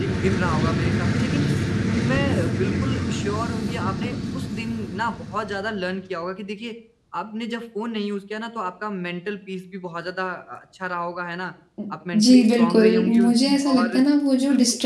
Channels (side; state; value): both; identical; correlation 1.00